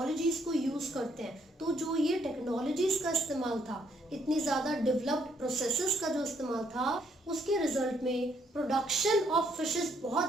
को यूज़ करते हैं तो जो ये टेक्नोलॉजीज का इस्तेमाल था, इतनी ज़्यादा डेवलप्ड प्रोसेसेस का जो इस्तेमाल था, उसके रिजल्ट में प्रोडक्शन ऑफ फिशेस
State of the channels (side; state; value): both; normal; correlation 0.71